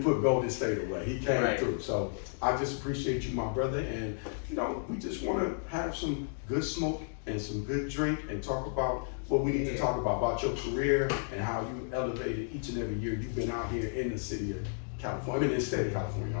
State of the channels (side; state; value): right; silent; digital silence